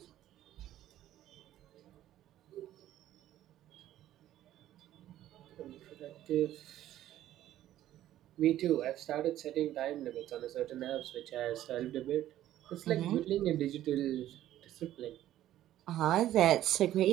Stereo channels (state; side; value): quieter; left; 13.0 dB